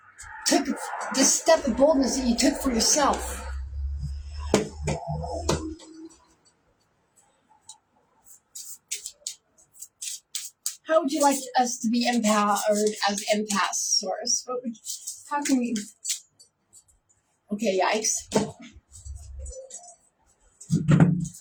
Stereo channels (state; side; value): identical; both; correlation 1.00